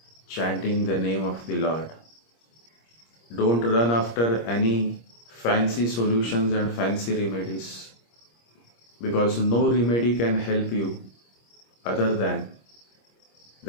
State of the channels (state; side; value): late; right; 26 ms